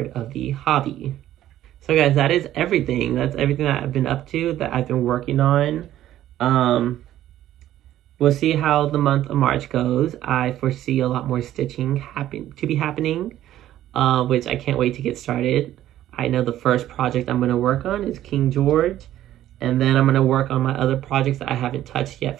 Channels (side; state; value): left; quieter; 12.9 dB